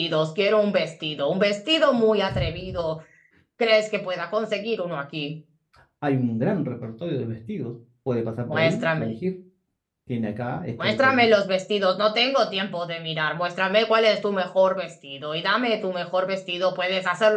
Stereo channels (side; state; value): both; identical; correlation 1.00